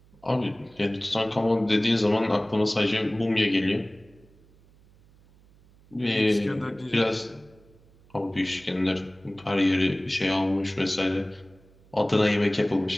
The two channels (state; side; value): noise; right; hum, 28 dB below the sound